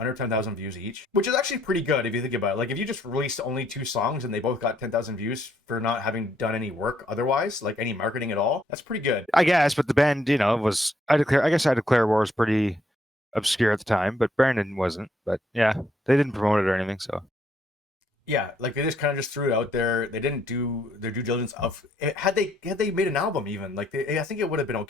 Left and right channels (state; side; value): normal; both; correlation 0.70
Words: 10,000 views each, which is actually pretty good if you think about it. Like if you just released only 2 songs and they both got 10,000 views for not having done any work otherwise, like any marketing at all, that's pretty good. I guess, but the band, was I guess I Declare War was pretty obscure at the time, but Brandon wasn't. But yeah, they didn't promote it or anything, so. Yeah, like they just kind of just threw it out there. They didn't do their due diligence of had they made an album even like I think it would have been